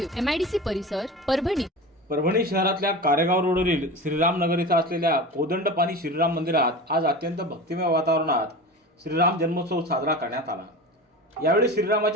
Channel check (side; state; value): both; normal; correlation 0.31